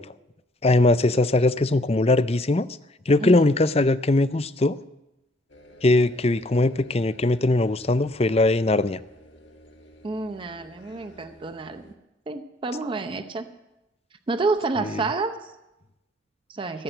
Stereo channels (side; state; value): both; normal; correlation 0.62